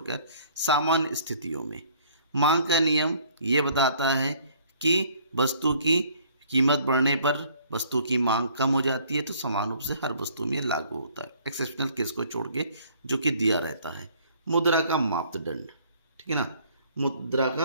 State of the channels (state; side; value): inverted; both; correlation -0.58